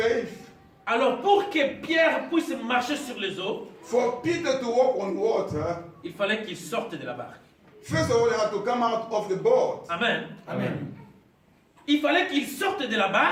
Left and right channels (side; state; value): both; identical; correlation 1.00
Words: Alors pour que Pierre puisse marcher sur les eaux, For Peter to walk on water, il fallait qu'il sorte de la barque. first of all, he had to come out of the boat. Amen. Il fallait qu'il sorte de la